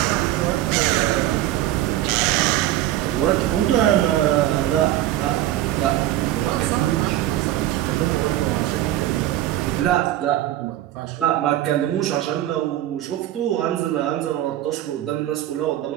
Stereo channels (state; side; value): quieter; left; 13.9 dB